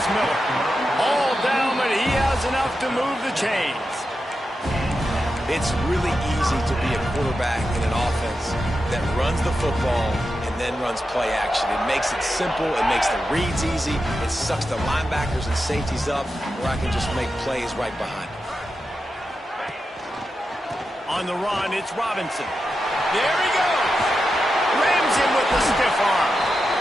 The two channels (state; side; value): normal; both; correlation 0.89